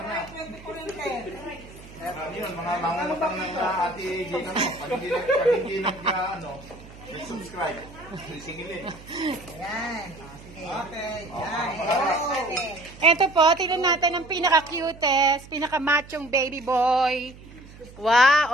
Yun, mga mangungutang ng ate Gina mo. Pag hindi subscribe. Singilin. Ayan. Okay. Ito po, tingnan natin ang pinaka-cutest, pinaka-machong baby boy.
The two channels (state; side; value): noise; right; hum, 19 dB below the sound